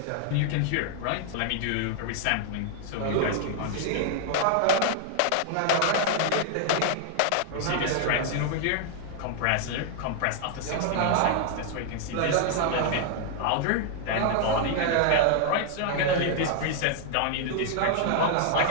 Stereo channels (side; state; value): both; different; correlation 0.00